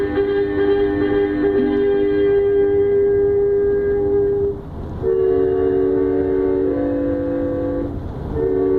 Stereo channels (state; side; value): identical; both; correlation 1.00